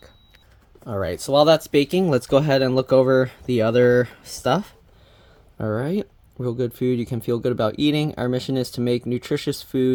Alright, so while that's baking, let's go ahead and look over the other stuff. Alright, real good food you can feel good about eating. Our mission is to make nutritious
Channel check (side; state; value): both; identical; correlation 1.00